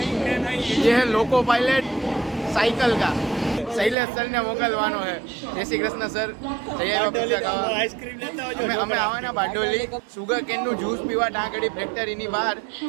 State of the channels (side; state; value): left; drops out; at 4.0 s